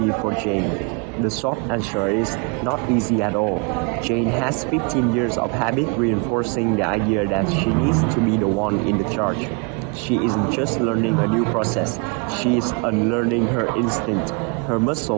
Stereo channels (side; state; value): left; quieter; 32.3 dB